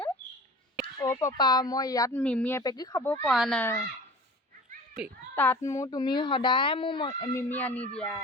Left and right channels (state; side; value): normal; both; correlation 0.41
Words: পাপা মই ইয়াত মিমি এপেকি খাব পৰা নাই তাত তুমি সদায় মোৰ মিমি আনি দিয়া